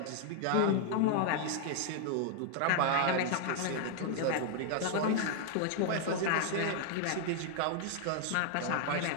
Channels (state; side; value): different; both; correlation 0.00